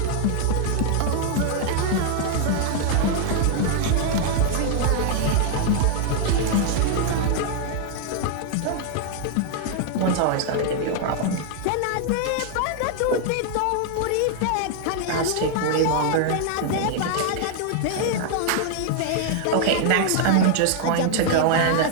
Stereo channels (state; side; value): different; both; correlation 0.00